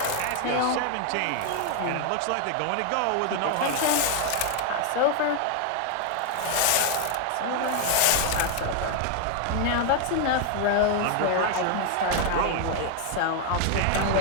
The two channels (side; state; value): both; different; correlation 0.00